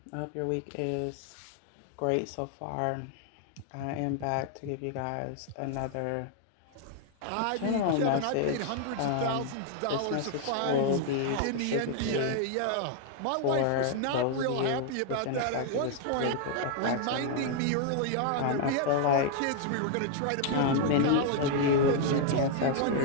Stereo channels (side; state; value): both; different; correlation 0.00